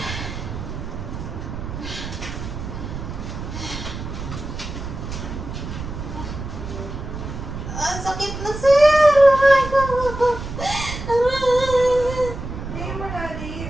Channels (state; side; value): noise; right; rumble, 8 dB below the sound